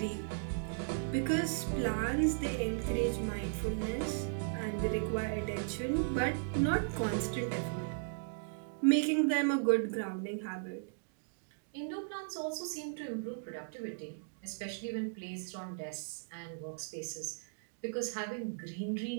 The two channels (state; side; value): silent; left; digital silence